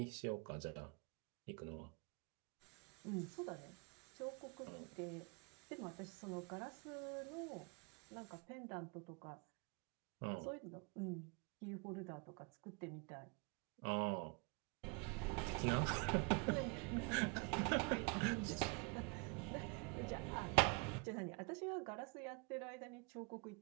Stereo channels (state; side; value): quieter; left; 30.5 dB